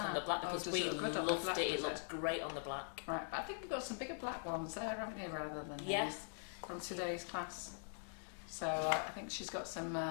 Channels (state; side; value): silent; right; digital silence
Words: the black, because does we it look good on the loved black, it. It does it? looks great on the black. Right, but I think we've got some bigger black ones there, haven't you, rather than Yeah. these from today's class. So I think she's got